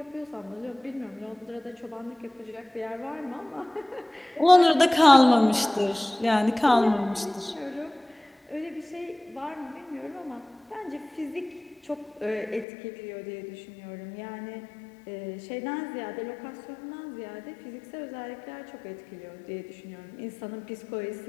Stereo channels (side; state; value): right; drops out; at 12.7 s